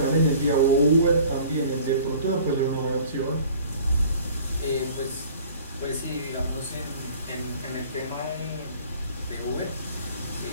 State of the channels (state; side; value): inverted; both; correlation -0.49